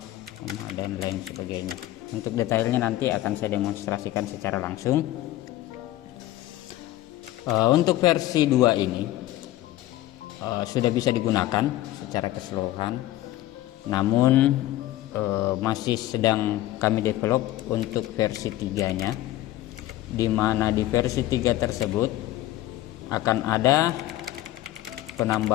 dan lain sebagainya. Untuk detailnya nanti akan saya demonstrasikan secara langsung. Untuk versi 2 ini sudah bisa digunakan secara keseluruhan, namun masih sedang kami develop untuk versi 3-nya, di mana di versi 3 tersebut akan ada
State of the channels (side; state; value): right; quieter; 15.0 dB